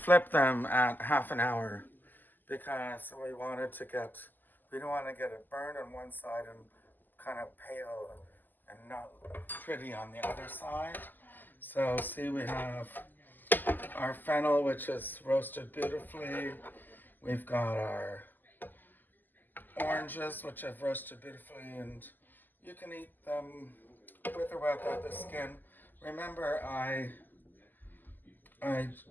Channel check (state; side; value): late; right; 0.087 ms